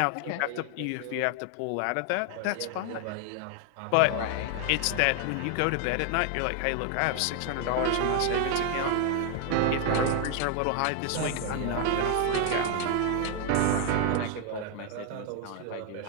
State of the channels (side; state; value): both; different; correlation 0.00